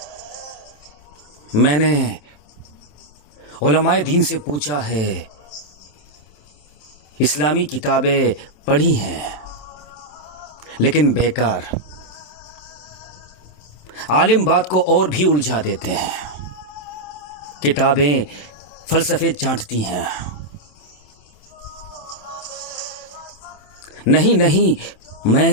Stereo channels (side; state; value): right; late; 27 ms